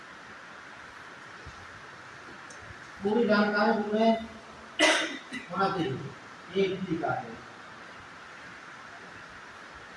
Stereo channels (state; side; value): identical; both; correlation 1.00